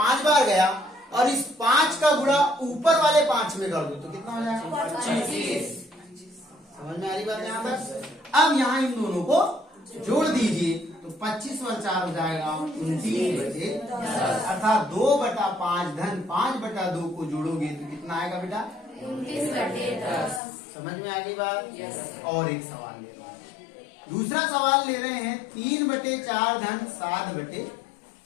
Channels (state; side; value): drops out; right; at 20.4 s